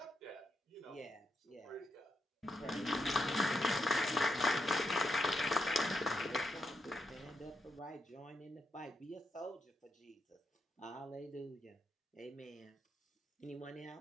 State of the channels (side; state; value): both; normal; correlation 0.82